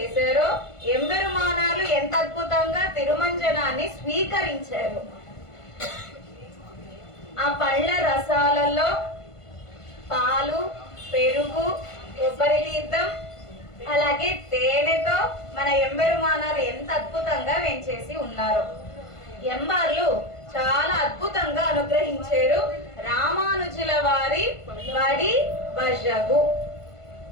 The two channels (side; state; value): right; late; 1.5 ms